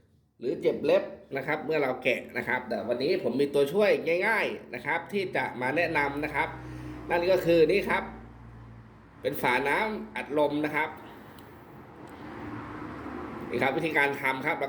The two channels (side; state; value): both; identical; correlation 1.00